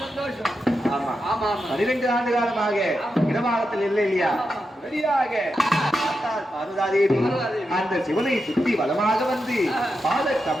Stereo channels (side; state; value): both; normal; correlation 0.88